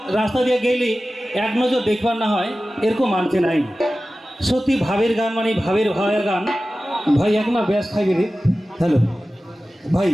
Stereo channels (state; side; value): normal; both; correlation 0.95